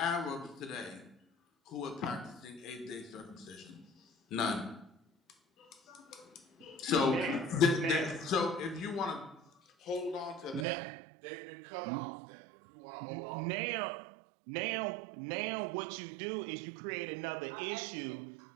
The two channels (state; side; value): drops out; left; at 10.7 s